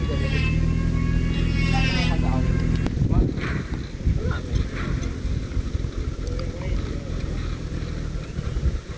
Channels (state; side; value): identical; both; correlation 1.00